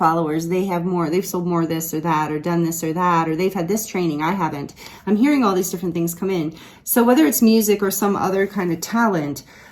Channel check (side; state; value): both; identical; correlation 1.00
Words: they've sold more this or that, or done this or that, or they've had this training, I haven't. I'm hearing all these different things come in. So whether it's music or some other kind of talent,